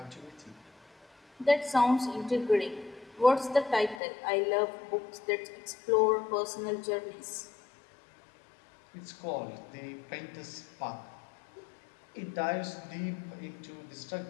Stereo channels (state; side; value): drops out; right; at 4.0 s